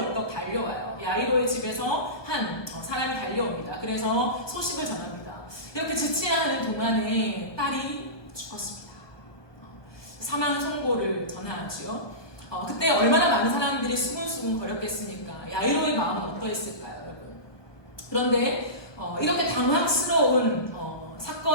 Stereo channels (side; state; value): right; late; 1.2 ms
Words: 달려와요. 야이로의 집에서 한 사람이 달려옵니다. 그래서 소식을 전합니다. 이렇게 지체하는 동안에 딸이 죽었습니다. 사망 선고를 전하지요. 그때 얼마나 많은 사람들이 수군수군 거렸겠습니까? 야이로의 마음은 어떠했을까요, 여러분? 그런데 이렇게 당황스러운